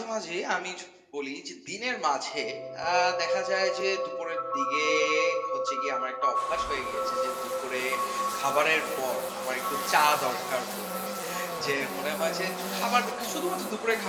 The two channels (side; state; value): both; identical; correlation 1.00